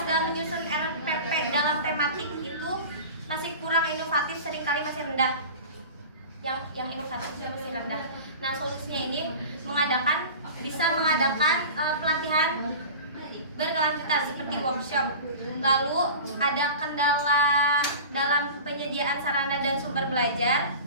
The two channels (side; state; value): both; inverted; correlation -0.35